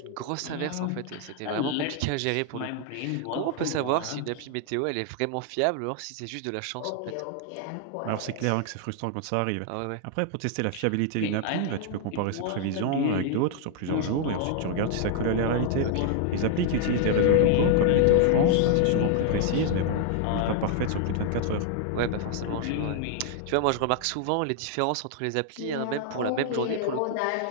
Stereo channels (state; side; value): different; both; correlation 0.00